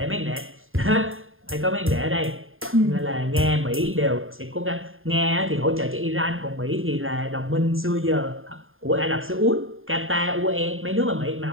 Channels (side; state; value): left; late; 0.60 ms